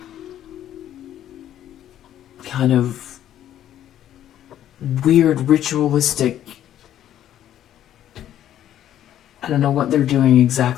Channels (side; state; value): right; quieter; 11.4 dB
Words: kind of weird ritualistic, I don't know what they're doing